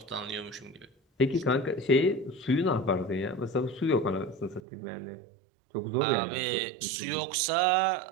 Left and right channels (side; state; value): left; drops out; at 4.6 s